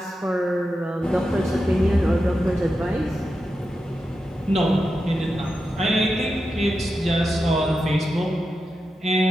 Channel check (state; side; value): normal; both; correlation 0.89